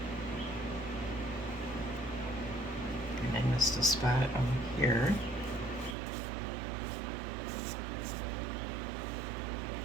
And I missed a spot over here.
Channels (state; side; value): drops out; left; at 6.0 s